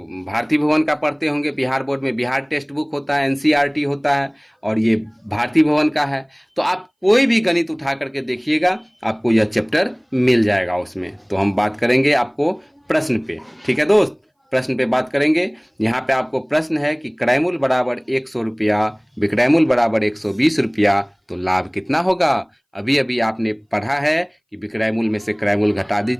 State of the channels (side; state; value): both; identical; correlation 1.00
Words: भारतीय भवन का पढ़ते होंगे, बिहार बोर्ड में बिहार टेक्स्ट बुक होता है, एनसीईआरटी होता है, और ये भारतीय भवन का है, तो आप कोई भी गणित उठा करके देखिएगा, आपको यह चैप्टर मिल जाएगा उसमें। तो हम बात करेंगे आपको प्रश्न पे, ठीक है दोस्त, प्रश्न पे बात करेंगे। यहाँ पे आपको प्रश्न है कि क्रयमूल्य बराबर 100 रुपया, विक्रयमूल्य बराबर 120 रुपया, तो लाभ कितना होगा। अभी अभी आपने पढ़ा है कि विक्रयमूल्य में से क्रयमूल्य घटा